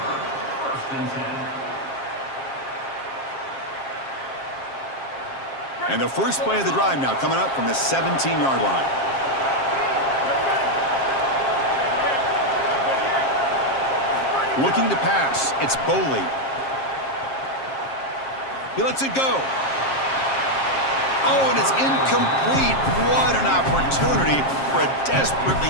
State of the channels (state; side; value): late; right; 7.5 ms